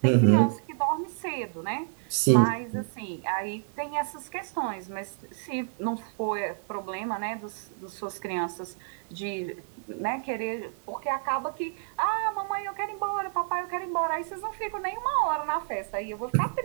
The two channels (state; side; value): silent; left; 58 dB below the other